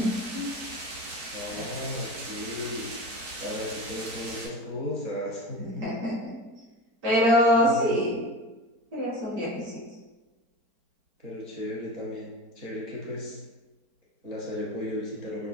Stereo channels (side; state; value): left; late; 4.4 ms